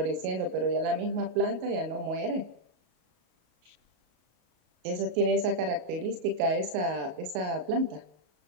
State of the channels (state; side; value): late; left; 33 ms